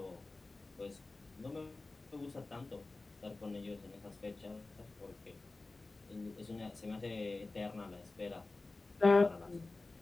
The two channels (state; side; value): quieter; right; 3.3 dB